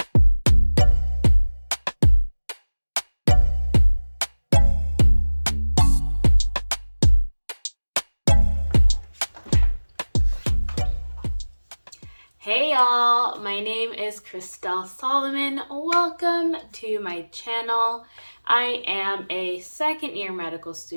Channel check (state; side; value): inverted; both; correlation -1.00